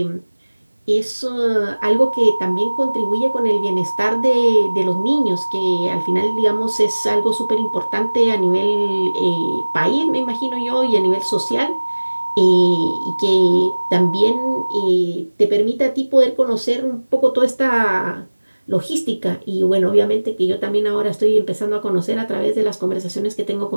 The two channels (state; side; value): inverted; both; correlation -1.00